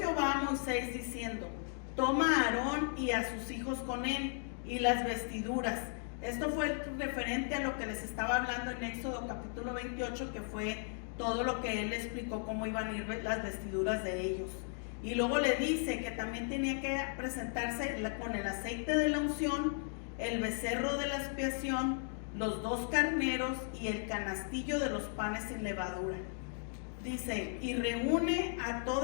a Moisés diciendo: toma a Aarón y a sus hijos con él, y las vestiduras. Esto fue referente a lo que les estaba hablando en Éxodo capítulo 28, que fue todo lo que él explicó, cómo iban a ir las vestiduras de ellos. Y luego le dice que también tenía que presentarse con el aceite de la unción, el becerro de la expiación, los 2 carneros y el canastillo de los panes sin levadura. Dice: y reúne a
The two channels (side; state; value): right; silent; 54 dB below the other